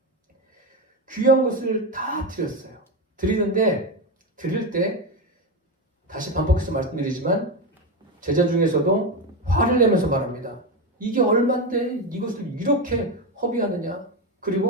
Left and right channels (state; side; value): normal; both; correlation 0.13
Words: 귀한 것을 다 드렸어요. 드리는데 드릴 때 다시 반복해서 말씀드리지만 제자 중에서도 화를 내면서 말합니다. 이게 얼만데 이것을 이렇게 허비하느냐?